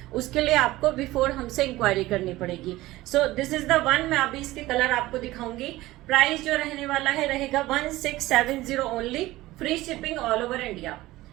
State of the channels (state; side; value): quieter; left; 17.6 dB